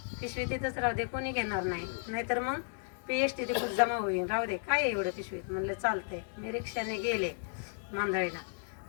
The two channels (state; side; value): silent; right; 55 dB below the other